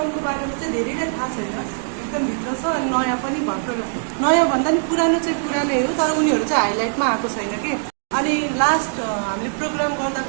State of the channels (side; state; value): left; silent; digital silence